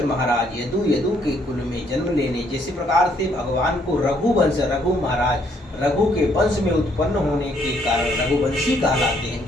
महाराज यदु के कुल में जन्म लेने, जैसे प्रकार से भगवान को रघुवंश, रघु महाराज, रघु के वंश में उत्पन्न होने के कारण रघुवंशी कहलाते हैं,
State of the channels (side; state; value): both; normal; correlation 0.68